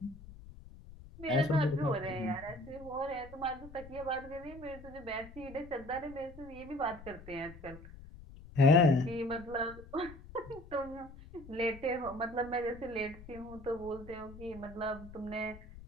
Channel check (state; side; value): noise; left; rumble, 17 dB below the sound